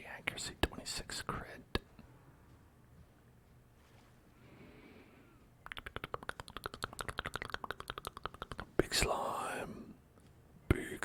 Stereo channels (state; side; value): identical; both; correlation 1.00